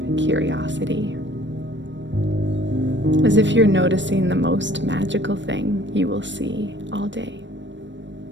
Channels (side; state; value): left; late; 0.53 ms